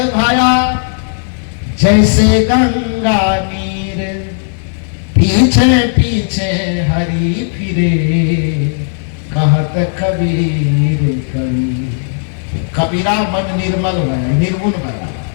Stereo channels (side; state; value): right; silent; 65 dB below the other